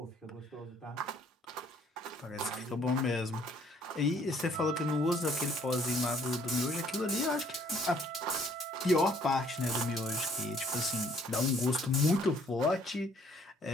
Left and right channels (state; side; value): normal; both; correlation 0.62